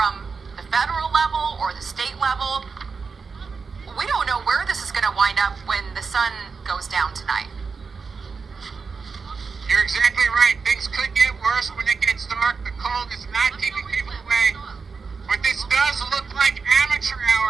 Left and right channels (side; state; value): left; quieter; 5.0 dB